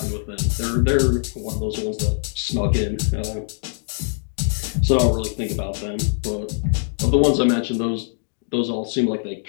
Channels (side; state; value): right; silent; digital silence